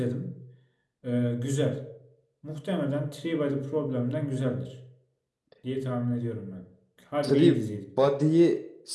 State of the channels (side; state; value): both; identical; correlation 1.00